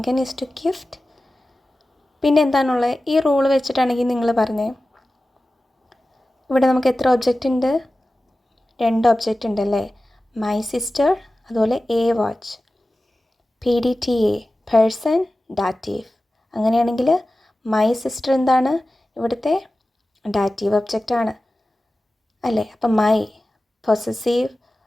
ഈസ് ടു ഗിഫ്റ്റ്. പിന്നെ എന്താണുള്ളത്? ഈ റൂൾ വെച്ചിട്ടാണെങ്കിൽ നിങ്ങൾ പറഞ്ഞേ, ഇവിടെ നമുക്ക് എത്ര ഒബ്ജക്റ്റ് ഉണ്ട്? 2 ഒബ്ജക്റ്റ് ഉണ്ടല്ലേ? മൈ സിസ്റ്റർ, അതുപോലെ A watch. PDTA person dative. അങ്ങനെയാണെങ്കിൽ മൈ സിസ്റ്റർ എന്താണ്? ഇവിടുത്തെ ഡാറ്റീവ് ഒബ്ജക്റ്റാണ് അല്ലേ? അപ്പം മൈ പൊസസീവ്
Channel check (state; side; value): normal; both; correlation 0.95